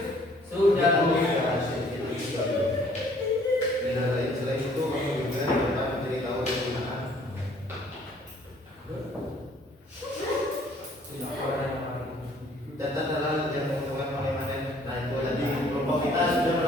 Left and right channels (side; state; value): both; normal; correlation 0.59